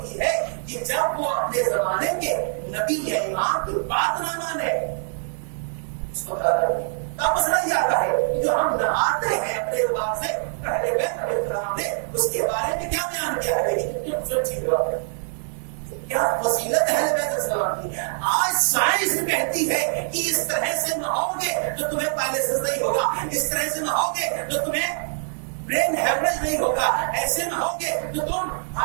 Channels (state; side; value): silent; left; digital silence